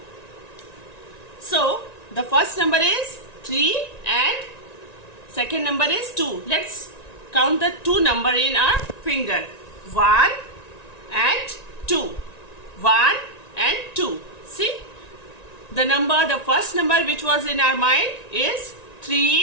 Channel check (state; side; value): late; right; 1.9 ms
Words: So, the first number is 3 and second number is 2. Let's count the 2 number in our finger. 1 and 2. 1 and 2. See? The first number which was in our mind is